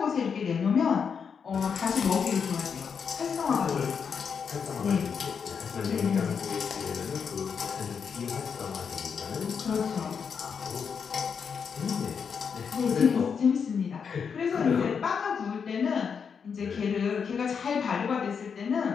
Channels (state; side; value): quieter; right; 6.4 dB